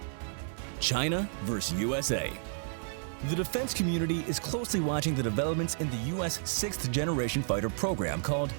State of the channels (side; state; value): left; silent; 57 dB below the other